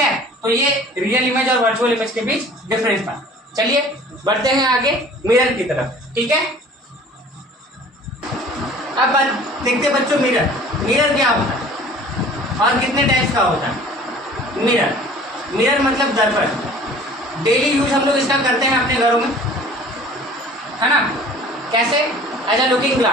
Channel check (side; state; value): both; normal; correlation 0.48